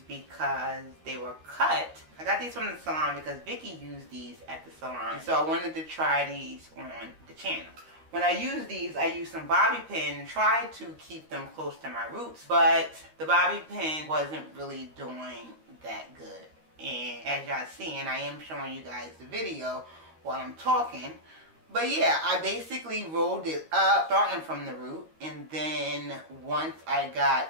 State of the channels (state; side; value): late; left; 13 ms